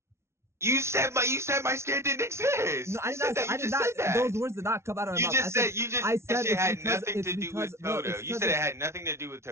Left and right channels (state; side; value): late; left; 0.13 ms